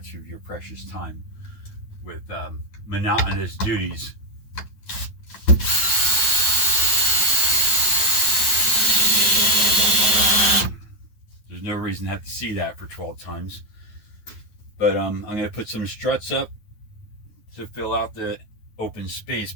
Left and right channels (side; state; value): right; late; 9.4 ms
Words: of your precious time with monotonous duties. There's no reason to have to see that for 12 times. But I'm going to put some struts up to fill out the open space